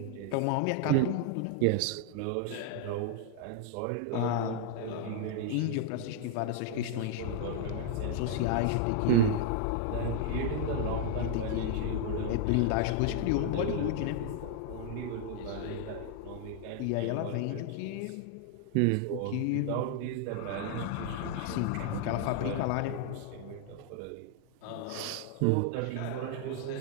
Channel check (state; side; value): different; both; correlation 0.00